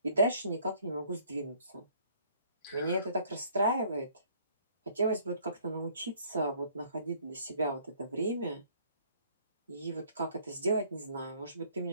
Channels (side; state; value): both; inverted; correlation -0.59